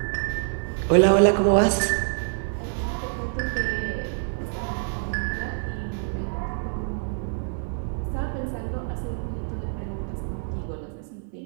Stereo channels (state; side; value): silent; left; 56 dB below the other